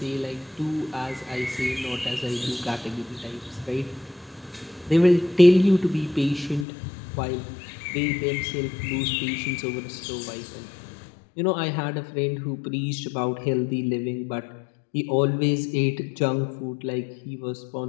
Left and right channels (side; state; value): right; drops out; at 6.7 s